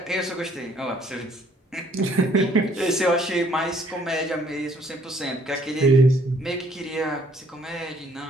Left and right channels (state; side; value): normal; both; correlation 0.63